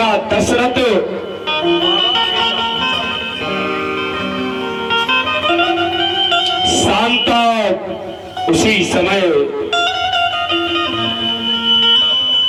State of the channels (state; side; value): identical; both; correlation 1.00